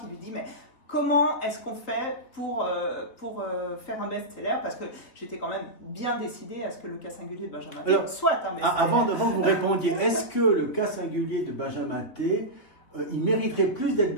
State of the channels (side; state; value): right; late; 3.8 ms